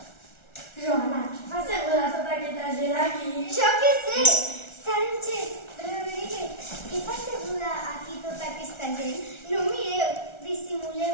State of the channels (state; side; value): late; right; 1.3 ms